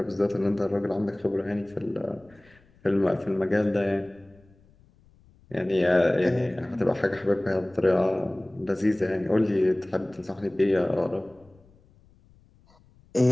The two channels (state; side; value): noise; left; rumble, 29 dB below the sound